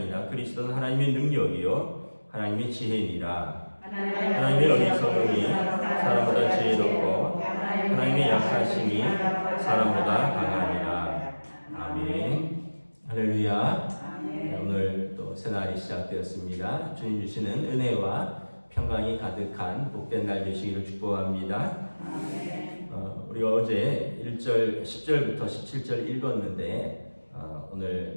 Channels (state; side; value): inverted; both; correlation -1.00